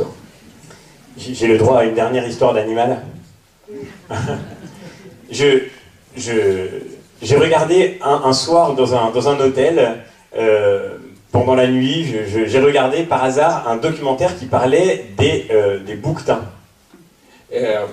J'ai le droit à une dernière histoire d'animal. J'ai regardé un soir dans un hôtel, pendant la nuit, j'ai regardé par hasard un documentaire qui parlait des bouquetins.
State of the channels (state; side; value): identical; both; correlation 1.00